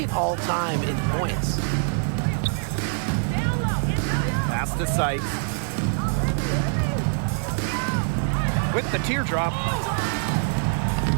all-time in points. Pass to Sykes. With the teardrop.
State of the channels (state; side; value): silent; left; 60 dB below the other